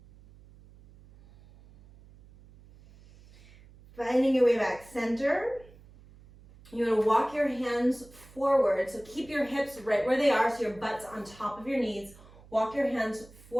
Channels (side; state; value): right; noise; hum, 23 dB below the sound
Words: Finding your way back center. You're going to walk your hands forward. So keep your hips right where they are, so your butt's on top of your knees. Walk your hands